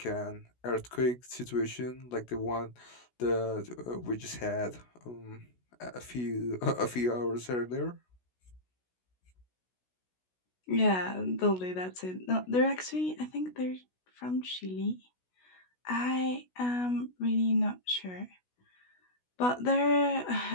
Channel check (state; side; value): late; right; 16 ms